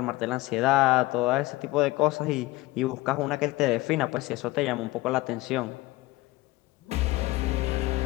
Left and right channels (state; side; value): quieter; right; 20.0 dB